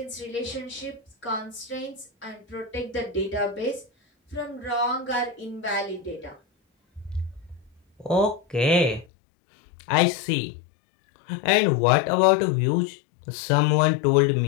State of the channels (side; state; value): right; drops out; at 9.1 s